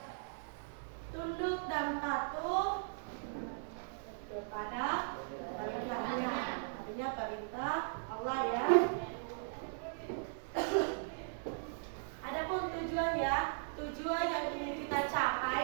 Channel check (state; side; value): silent; left; 52 dB below the other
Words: tunduk dan patuh kepada perintahnya. Artinya perintah Allah ya. Adapun tujuan ya, tujuan yang ingin kita